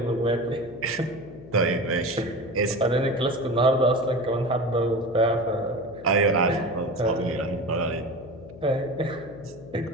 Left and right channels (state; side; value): noise; left; hum, 17 dB below the sound